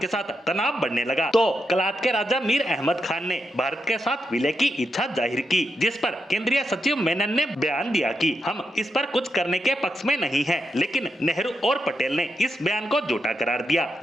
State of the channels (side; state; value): both; normal; correlation 0.84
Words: साथ तनाव बढ़ने लगा तो कलात के राजा मीर अहमद खान ने भारत के साथ विलय की इच्छा जाहिर की, जिस पर केंद्रीय सचिव मेनन ने बयान दिया कि हम इस पर कुछ करने के पक्ष में नहीं हैं। लेकिन नेहरू और पटेल ने इस बयान को झूठा करार दिया।